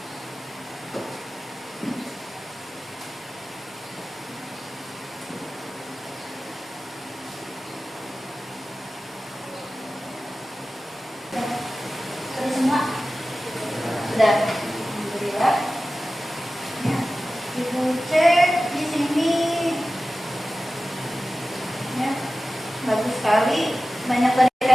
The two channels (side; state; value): both; normal; correlation 0.95